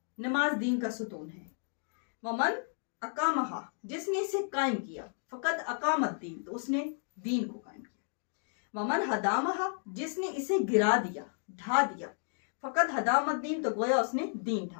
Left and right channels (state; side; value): silent; right; 56 dB below the other